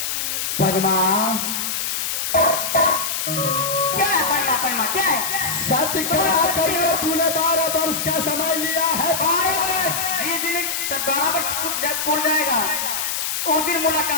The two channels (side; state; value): left; noise; hiss, 1 dB below the sound